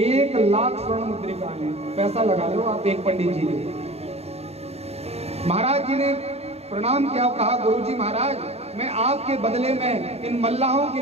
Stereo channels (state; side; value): late; left; 0.30 ms